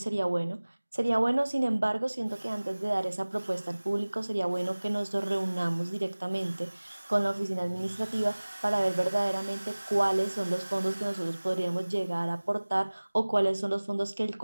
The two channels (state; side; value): inverted; both; correlation -1.00